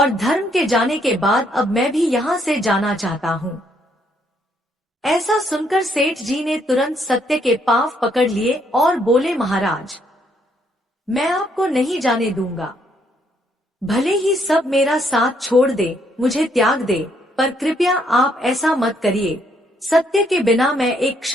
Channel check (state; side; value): normal; both; correlation 0.71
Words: धर्म के जाने के बाद अब मैं भी यहाँ से जाना चाहता हूँ। ऐसा सुनकर सेठ जी ने तुरंत सत्य के पांव पकड़ लिए और बोले, महाराज, मैं आपको नहीं जाने दूंगा। भले ही सब मेरा साथ छोड़ दे, मुझे त्याग दे, पर कृपया आप ऐसा मत करिए। सत्य के बिना मैं एक